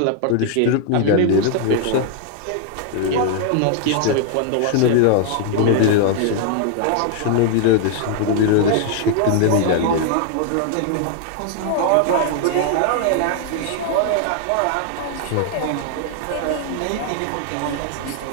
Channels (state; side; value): different; both; correlation 0.00